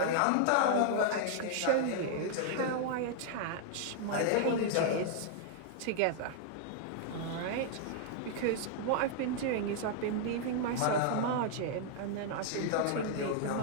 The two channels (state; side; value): different; both; correlation -0.01